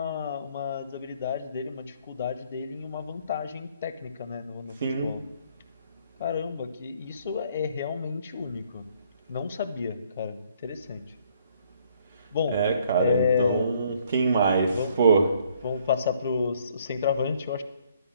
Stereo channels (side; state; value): both; inverted; correlation -0.64